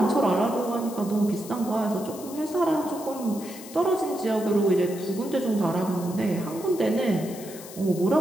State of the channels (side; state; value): left; noise; hiss, 15 dB below the sound